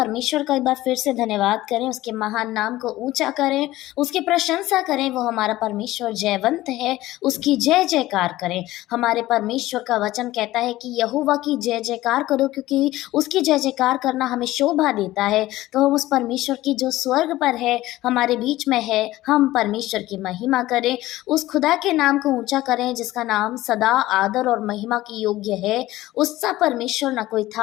का एक बार फिर से धन्यवाद करें, उसके महान नाम को ऊंचा करें, उसकी प्रशंसा करें। वो हमारा परमेश्वर जयवंत है, उसकी जय जयकार करें। हमारे परमेश्वर का वचन कहता है कि यहोवा की जय जयकार करो, क्योंकि उसकी जय जयकार करना हमें शोभा देता है। तो हम उस परमेश्वर की जो स्वर्ग पर है, हमारे बीच में है, हम परमेश्वर की महिमा करें, उस खुदा के नाम को ऊंचा करें जिसका नाम सदा आदर और महिमा की योग्य है। उसका परमेश्वर ना कोई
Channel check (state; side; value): quieter; right; 16.5 dB